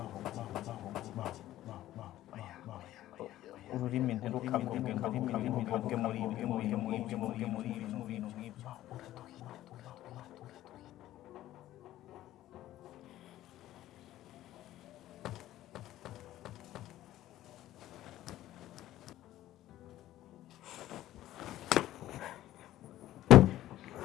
ururimi ntirukavuge muri ibyo bintu nk'ibyo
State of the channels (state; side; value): quieter; right; 14.1 dB